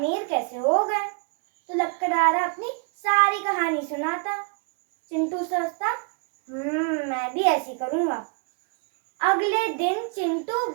कैसे हो गए। तो लकड़हारा अपनी सारी कहानी सुनाता। चिंटू सोचता, मैं भी ऐसी करूंगा। अगले दिन चिंटू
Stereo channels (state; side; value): quieter; left; 37.7 dB